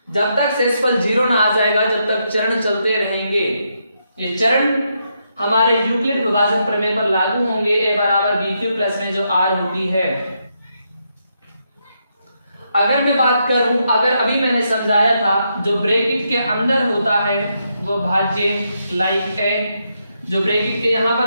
जब तक शेषफल 0 ना आ जाएगा, जब तक चरण चलते रहेंगे। ये चरण हमारे यूक्लिड विभाजन प्रमेय पर लागू होंगे। a बराबर बी क्यू प्लस में जो r होती है। अगर मैं बात करूं, अगर अभी मैंने समझाया था जो ब्रैकेट के अंदर होता है वो भाज्य लाइक a, जो ब्रैकेट के यहां पर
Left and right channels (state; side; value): inverted; both; correlation -0.80